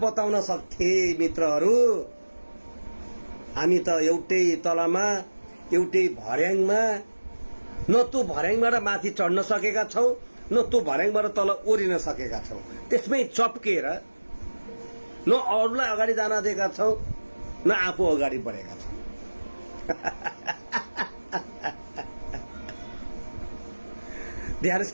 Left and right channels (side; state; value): both; inverted; correlation -1.00